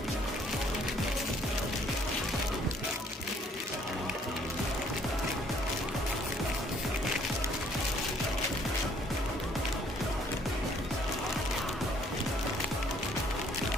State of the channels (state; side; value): normal; both; correlation 0.62